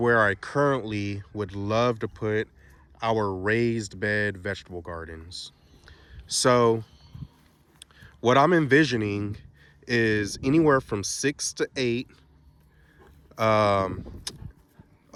I currently would love to put our raised bed vegetable gardens. So what I'm envisioning is anywhere from 6 to 8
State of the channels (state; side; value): identical; both; correlation 1.00